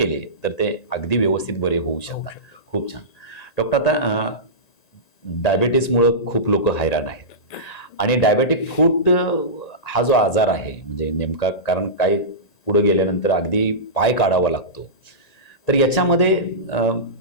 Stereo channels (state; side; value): late; right; 1.9 ms